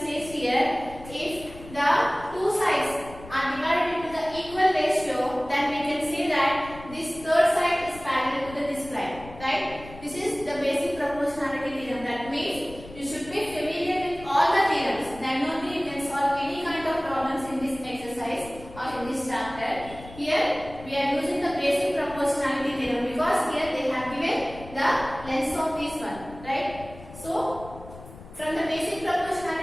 says here, if the two sides are divided into the equal ratio, then we can say that this third side is parallel to this line, right? This is the basic proportionality theorem. That means you should be familiar with all the theorems. Then only you can solve any kind of problems in this exercise or in this chapter. Here we are using the basic proportionality theorem because here they have given the length of this one, right? So from the basic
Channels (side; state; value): left; noise; rumble, 17 dB below the sound